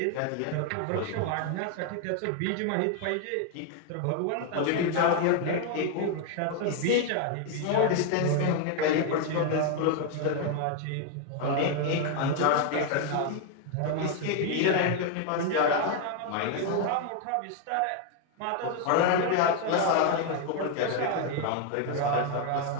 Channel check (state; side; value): different; both; correlation 0.01